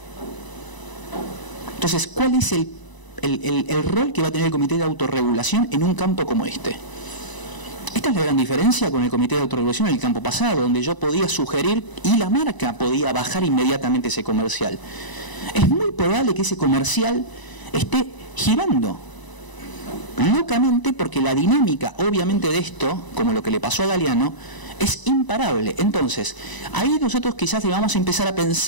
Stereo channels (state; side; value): late; right; 1.0 ms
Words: Entonces, ¿cuál es el rol que va a tener el comité de autorregulación en un campo como este? Esta es la gran diferencia con el comité de autorregulación en el campo pasado, donde yo podía sugerir y la marca podía bajar inmediatamente ese comercial. Es muy probable que ese comercial esté girando locamente, porque la dinámica, obviamente, de esto, como lo que le pasó a Galeano, es imparable. Entonces, ahí nosotros quizás vamos a empezar a